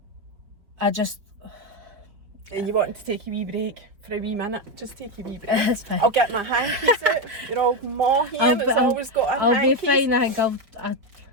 I just... And you wanted to take a wee break for a wee minute? Just take a wee break. It's fine. I'll get my hankies out. You're all more here. Always got a I'll hankies. be fine. I think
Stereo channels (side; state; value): left; late; 4.6 ms